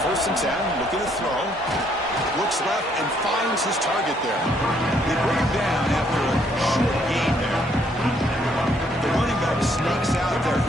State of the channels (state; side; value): normal; both; correlation 0.69